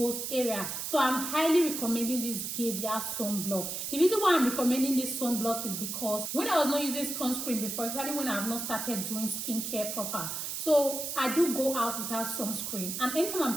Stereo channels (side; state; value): right; noise; hiss, 4 dB below the sound